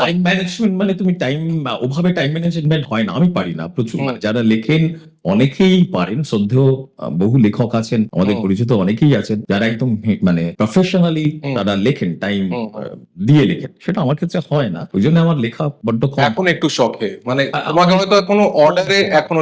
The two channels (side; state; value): both; identical; correlation 1.00